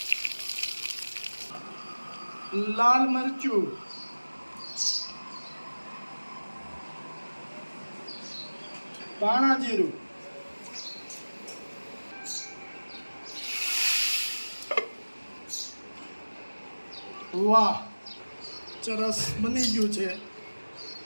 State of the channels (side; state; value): both; inverted; correlation -1.00